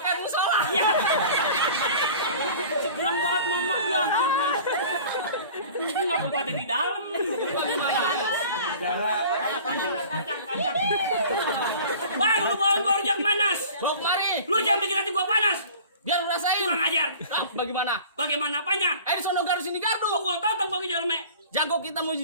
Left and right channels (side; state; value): both; inverted; correlation -0.43